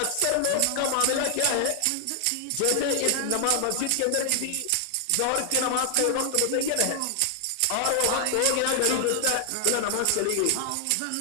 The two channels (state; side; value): different; both; correlation 0.00